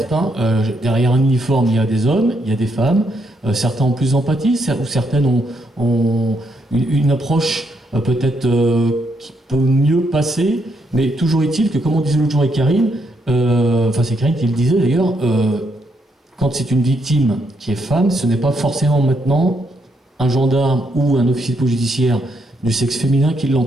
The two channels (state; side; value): normal; both; correlation 0.76